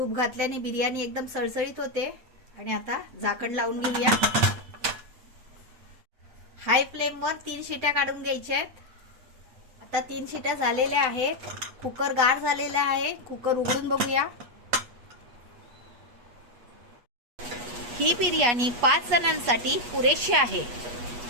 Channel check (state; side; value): late; left; 8.3 ms